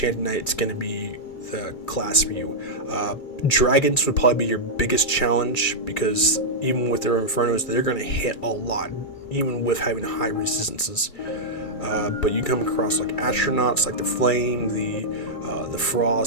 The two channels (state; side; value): late; right; 2.3 ms